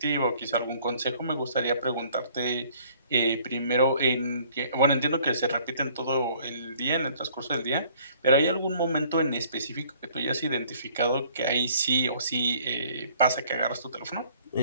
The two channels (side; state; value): both; inverted; correlation -0.58